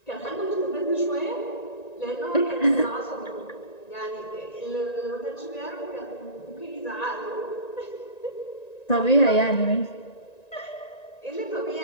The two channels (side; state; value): right; late; 1.9 ms